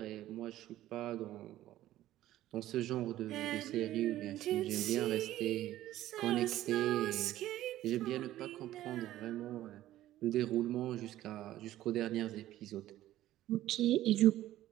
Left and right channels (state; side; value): quieter; left; 14.1 dB